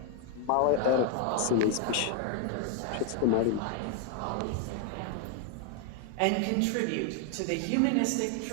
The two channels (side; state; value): both; different; correlation 0.01